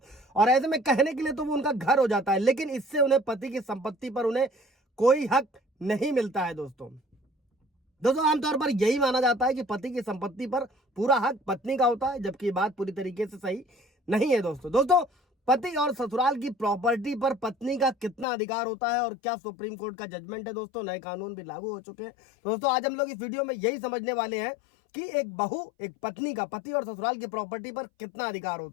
और ऐसे में कहने के लिए तो वो उनका घर हो जाता है, लेकिन इससे उन्हें पति की संपत्ति पर उन्हें कोई हक नहीं मिलता है दोस्तों आमतौर पर यही माना जाता है कि पति की संपत्ति पर पूरा हक पत्नी का होता है, जबकि ये बात पूरी तरीके से सही नहीं है दोस्तों पति और ससुराल की प्रॉपर्टी पर पत्नी का कितना अधिकार होता है और क्या सुप्रीम कोर्ट का जजमेंट है दोस्तों। नए कानून भी लागू हो चुके हैं दोस्तों। आज हम लोग इस वीडियो में यही समझने वाले हैं कि एक बहू, एक पत्नी का पति और ससुराल की प्रॉपर्टी पर कितना अधिकार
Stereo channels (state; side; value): drops out; right; at 18.2 s